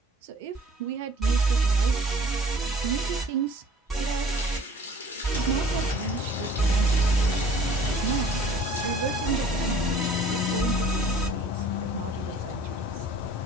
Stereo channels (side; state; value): both; normal; correlation 0.51